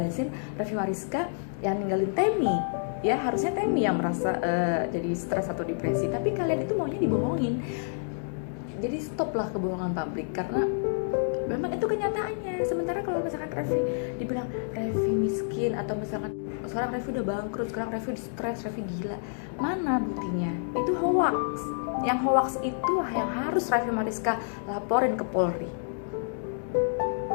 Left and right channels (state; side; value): silent; right; digital silence